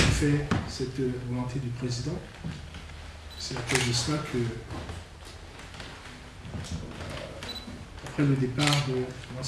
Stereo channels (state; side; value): identical; both; correlation 1.00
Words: cette volonté du Président. C'est à cause de cela que, après le départ de